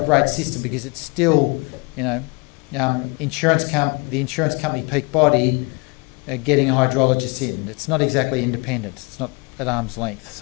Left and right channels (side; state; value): right; quieter; 30.2 dB